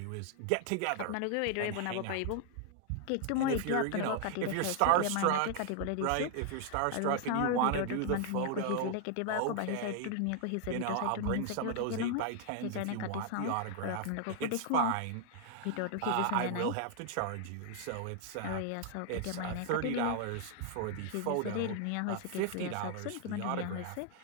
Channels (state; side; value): different; both; correlation 0.00